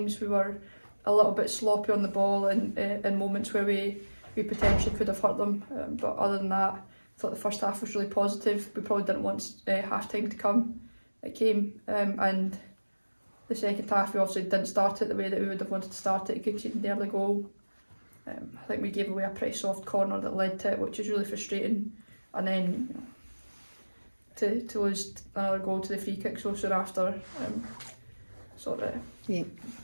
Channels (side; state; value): both; inverted; correlation -1.00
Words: we were a little bit sloppy on the ball and in moments where we potentially could have hurt them. But other than that, I thought the first half was really positive. We probably didn't want half-time to come. It came, and the second half we obviously didn't start it the way that we would have wanted to start it, conceding the early goal. I think we gave away a pretty soft corner that led to it, which is really frustrating. And then to lose another goal to the free kick so soon after sort of